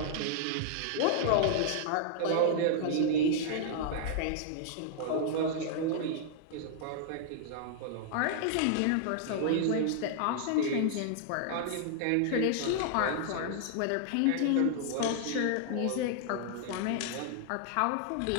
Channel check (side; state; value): both; different; correlation -0.01